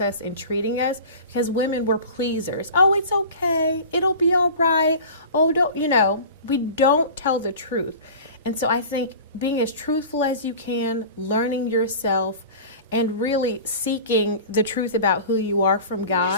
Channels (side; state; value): both; inverted; correlation -0.37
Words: us and treating us, because women, we're pleasers. Oh, it's okay. It'll be all right. Oh, we don't tell the truth. And so I think being as truthful as you can, learning yourself, and really seeking the truth about who you are from